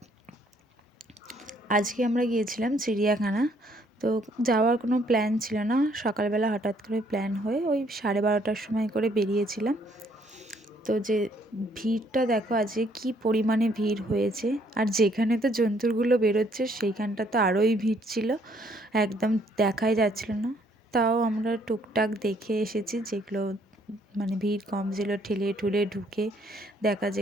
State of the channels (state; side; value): normal; both; correlation 0.66